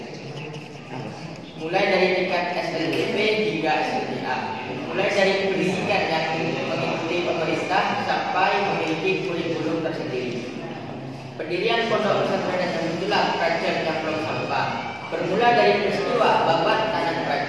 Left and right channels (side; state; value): both; identical; correlation 1.00